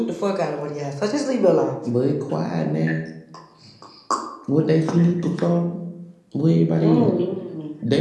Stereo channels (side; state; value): both; identical; correlation 1.00